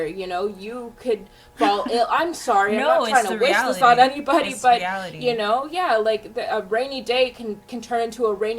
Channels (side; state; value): both; identical; correlation 1.00